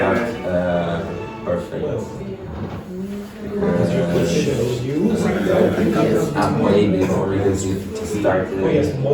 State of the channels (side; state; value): both; identical; correlation 1.00